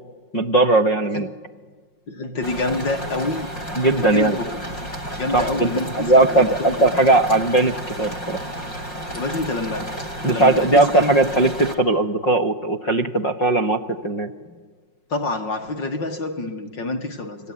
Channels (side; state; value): right; late; 5.5 ms